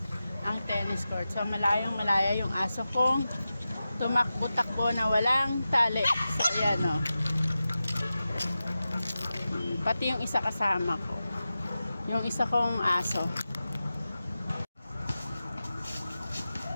ang tennis court. So, malayong malaya yung aso kong tumakbo-takbo na walang tali. So, ayan o. Pati yung isa kasama ko. Yung isa kong aso.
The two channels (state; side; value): inverted; both; correlation -0.93